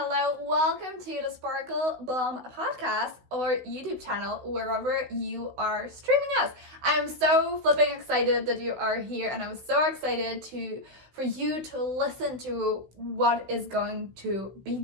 Welcome to the Sparkle Bomb podcast or YouTube channel, wherever you are streaming us. I'm so flipping excited that you are here, and I'm so excited for you to listen to what is going to be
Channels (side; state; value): left; late; 16 ms